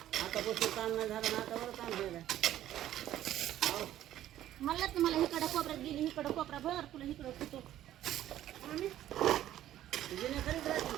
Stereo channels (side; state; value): left; quieter; 12.7 dB